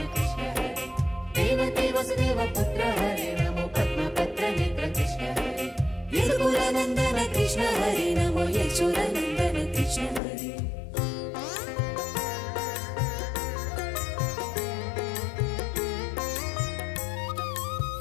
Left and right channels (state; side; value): drops out; right; at 10.2 s